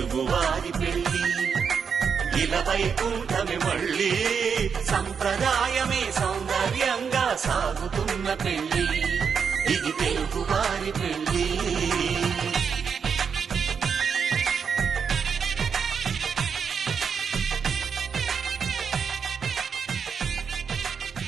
పెళ్లి ఇలా వైకుంఠమి మళ్ళీ. సంప్రదాయమే సౌందర్యంగా సాగుతున్న పెళ్లి. ఇది తెలుగువారి పెళ్లి.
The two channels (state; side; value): quieter; left; 6.5 dB